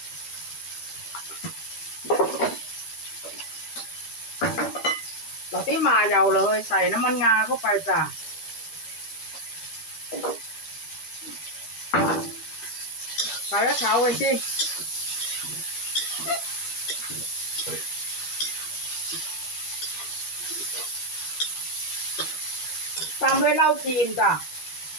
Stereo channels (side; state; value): right; late; 12 ms